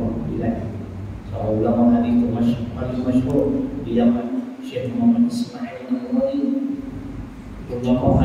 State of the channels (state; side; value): identical; both; correlation 1.00